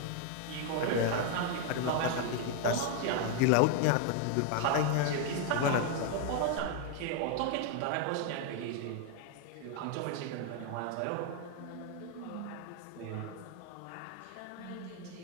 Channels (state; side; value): different; both; correlation 0.01